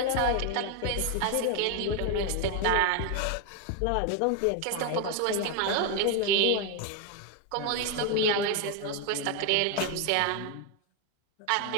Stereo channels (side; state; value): both; different; correlation 0.01